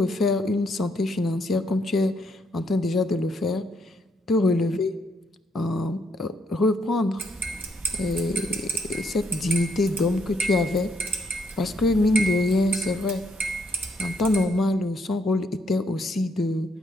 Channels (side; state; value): both; normal; correlation 0.73